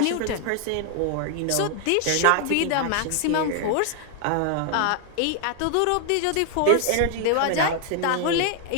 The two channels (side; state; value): both; different; correlation 0.00